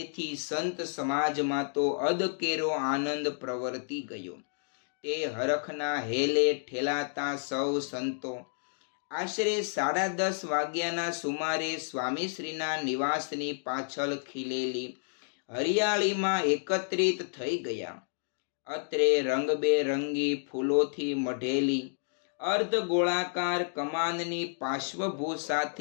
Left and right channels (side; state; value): right; silent; digital silence